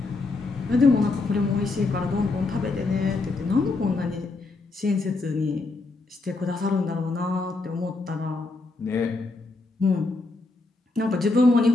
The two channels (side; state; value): right; quieter; 3.5 dB